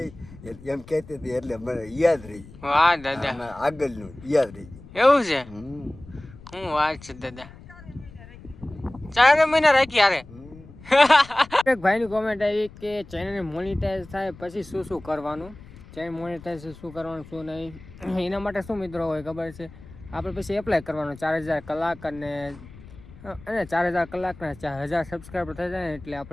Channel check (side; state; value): left; noise; rumble, 19 dB below the sound